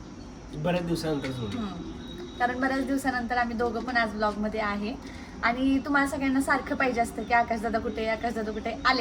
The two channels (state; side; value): identical; both; correlation 1.00